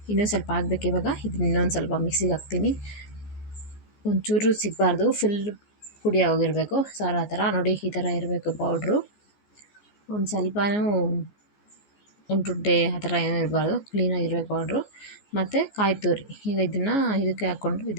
ಇನ್ನೊಂದು ಸ್ವಲ್ಪ ಆಗಬೇಕು. ಇವಾಗ ಇದನ್ನ ಇನ್ನೊಂದು ಸ್ವಲ್ಪ ಮಿಕ್ಸಿಗೆ ಹಾಕ್ತೀನಿ. ಒಂಚೂರು ಸಿಗಬಾರ್ದು, ಫುಲ್ ಪುಡಿ ಆಗೋಗಿರಬೇಕು. ಸಾರು ಆ ಥರ ನೋಡಿ ಈ ಥರ ಇರಬೇಕು ಪೌಡ್ರು. ಒಂದು ಸ್ವಲ್ಪನೂ ಉಂಟುಂಟೆ ಆ ಥರ ಏನೂ ಇರಬಾರ್ದು, ಕ್ಲೀನಾಗಿರಬೇಕು ಪೌಡ್ರು. ಮತ್ತು ಕಾಯಿ ತುರಿ ಈಗ ಇದಕ್ಕೆ ಹಾಕ್ಕೊಂಡು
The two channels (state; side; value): late; right; 14 ms